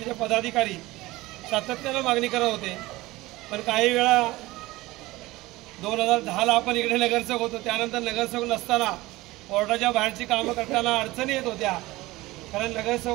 पदाधिकारी सातत्यानं मागणी करत होते, पण काही वेळा 2010ला आपण इकडे नगरसेवक होतो, त्यानंतर नगरसेवक नसताना वॉर्डाच्या बाहेरची कामं करताना अडचणी येत होत्या। कारण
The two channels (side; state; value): left; quieter; 19.4 dB